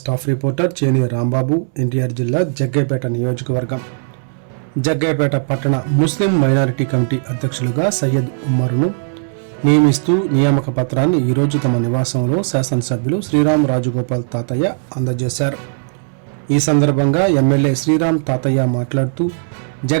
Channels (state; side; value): silent; left; 65 dB below the other